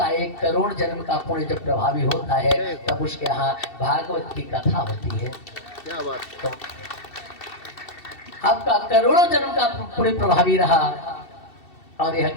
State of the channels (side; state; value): right; late; 2.7 ms